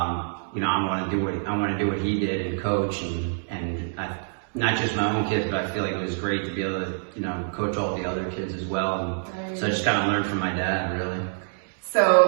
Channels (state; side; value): silent; left; digital silence